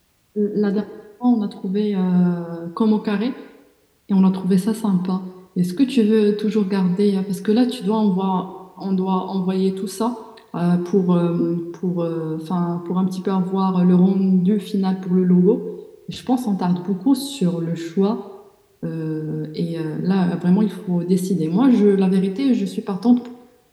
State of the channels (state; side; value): identical; both; correlation 1.00